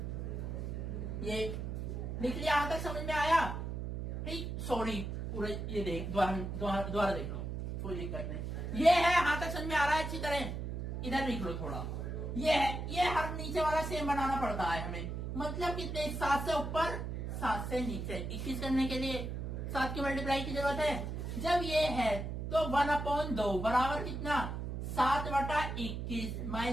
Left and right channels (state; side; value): noise; right; hum, 4 dB below the sound